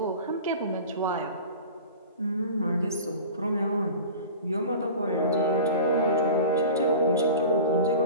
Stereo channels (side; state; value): both; inverted; correlation -0.37